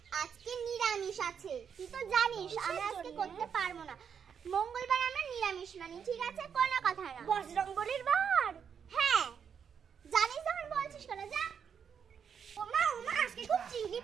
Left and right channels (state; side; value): quieter; left; 7.3 dB